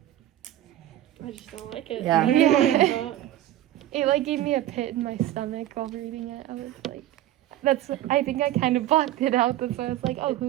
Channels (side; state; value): left; quieter; 13.6 dB